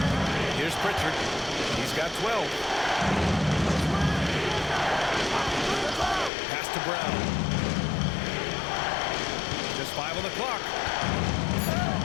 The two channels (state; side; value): drops out; right; at 6.3 s